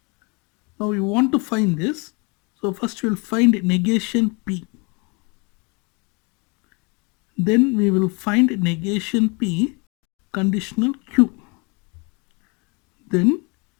Now we want to find this. So first we will find negation P. Then we will find negation P conditional Q. Then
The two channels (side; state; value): right; quieter; 31.0 dB